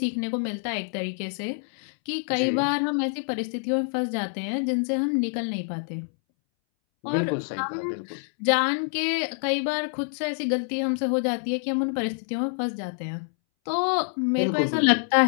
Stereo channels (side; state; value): right; silent; 61 dB below the other